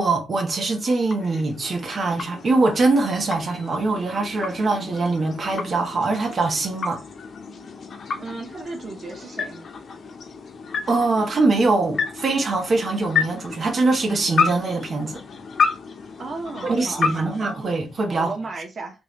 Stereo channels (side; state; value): both; normal; correlation 0.82